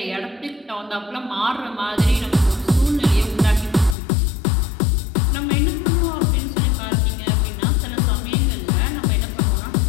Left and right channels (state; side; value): drops out; right; at 4.0 s